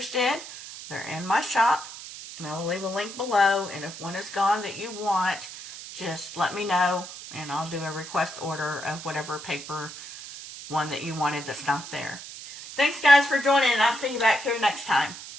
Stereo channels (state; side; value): noise; right; hiss, 12 dB below the sound